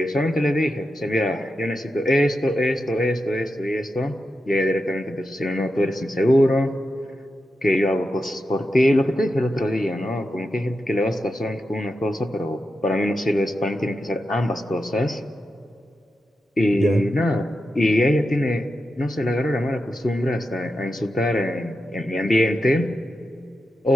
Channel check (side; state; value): both; normal; correlation 0.89